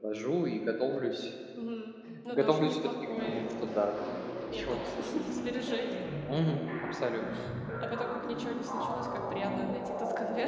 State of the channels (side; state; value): both; identical; correlation 1.00